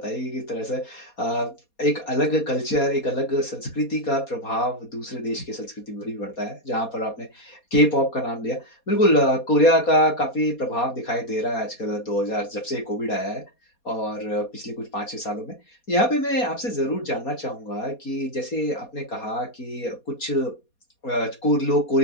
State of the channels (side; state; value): right; late; 4.2 ms